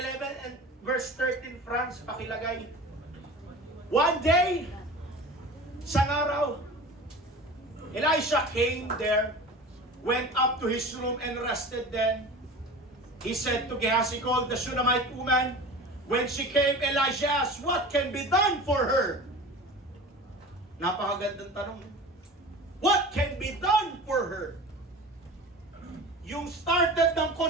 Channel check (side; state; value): both; normal; correlation 0.36